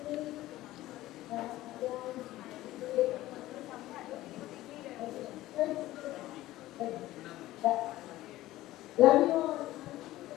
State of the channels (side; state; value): right; quieter; 16.1 dB